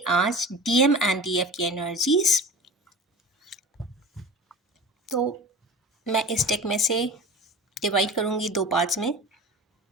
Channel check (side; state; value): both; normal; correlation 0.36